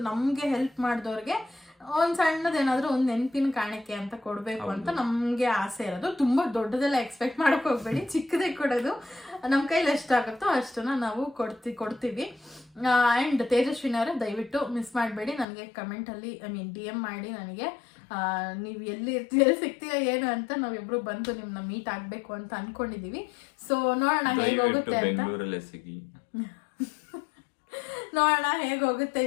ನಮ್ಗೆ ಹೆಲ್ಪ್ ಮಾಡಿದವ್ರಿಗೆ ಒಂದ್ ಸಣ್ಣದೇನಾದ್ರೂ ಒಂದ್ ನೆನಪಿನ ಕಾಣಿಕೆ ಅಂತ ಕೊಡ್ಬೇಕು ಅಂತ ನಮ್ಗೆ ಆಸೆ ಇರೋದು. ತುಂಬಾ ದೊಡ್ಡದೆಲ್ಲ ಎಕ್ಸ್ಪೆಕ್ಟ್ ಮಾಡಕ್ ಹೋಗ್ಬೇಡಿ, ಚಿಕ್ಕದೇ ಕೊಡೋದು. ನಮ್ ಕೈಲಿ ಎಷ್ಟಾಗುತ್ತೋ ಅಷ್ಟನ್ನ ನಾವು ಕೊಡ್ತೀವಿ. ಆ್ಯಂಡ್ ತೇಜಸ್ವಿನಿ ಅವರೇ ದಯವಿಟ್ಟು ಮಿಸ್ ಮಾಡಬೇಡಿ, ನನಗೆ ಕಮೆಂಟಲ್ಲಿ DM ಮಾಡಿ ನನಗೆ ನೀವು ಎಲ್ಲಿ ಸಿಗ್ತೀರಾ ಏನು ಅಂತ, ನಾವಿಬ್ರು ಬಂದು ನಿಮ್ಮನ್ನ ಮೀಟ್ ಆಗಬೇಕು ಅಂತ ಅನ್ಕೊಂಡಿದೀವಿ. ಸೊ ನೋಡೋಣ ಹೇಗೋಗುತ್ತೆ ಅಂತ, ನೋಡೋಣ ಹೇಗೋಗುತ್ತೆ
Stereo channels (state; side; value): drops out; right; at 15.5 s